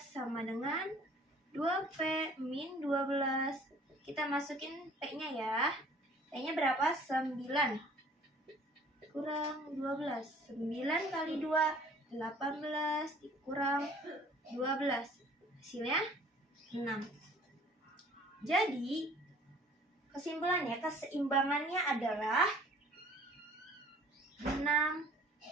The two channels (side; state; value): both; normal; correlation 0.53